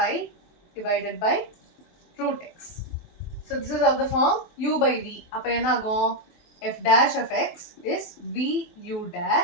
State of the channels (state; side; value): late; right; 23 ms